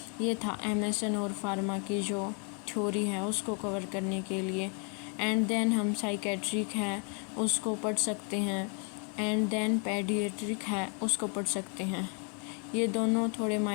ये था MSN और फार्मा की जो थ्योरी है उसको कवर करने के लिए। एंड देन हम साइकेट्रिक है उसको पढ़ सकते हैं। एंड देन पेडिएट्रिक है उसको पढ़ सकते हैं। ये दोनों थोड़े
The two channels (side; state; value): right; quieter; 38.7 dB